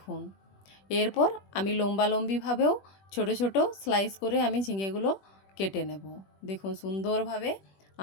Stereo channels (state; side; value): late; right; 21 ms